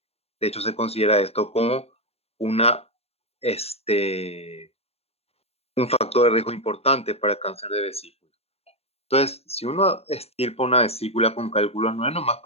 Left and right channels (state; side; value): late; right; 0.29 ms